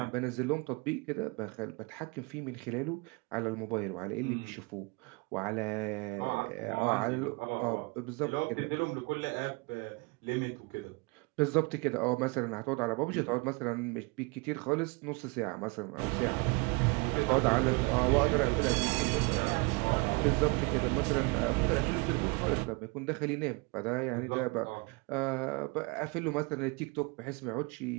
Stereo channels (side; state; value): left; quieter; 28.6 dB